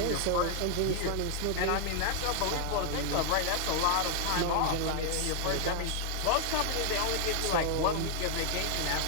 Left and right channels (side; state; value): both; different; correlation 0.00